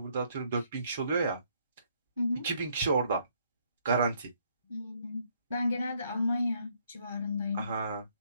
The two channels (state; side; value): inverted; both; correlation -0.70